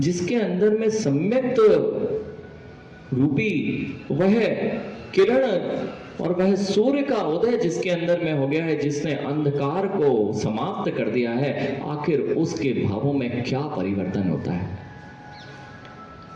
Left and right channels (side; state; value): both; identical; correlation 1.00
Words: अंदर में सम्यक रूपी वह किरण और वह सूर्य का उदय जिसके अंदर में हो गया है, जिसने अंधकार को समाप्त कर दिया है, आखिर उसके भावों में क्या परिवर्तन होता है।